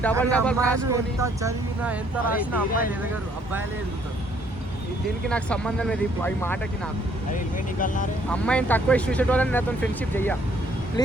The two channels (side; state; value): both; normal; correlation 0.65